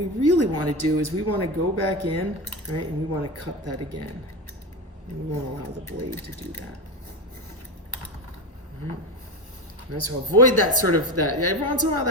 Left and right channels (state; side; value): normal; both; correlation 0.19